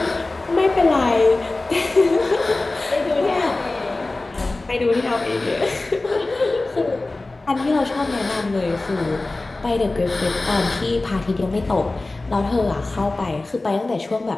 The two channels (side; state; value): right; quieter; 3.1 dB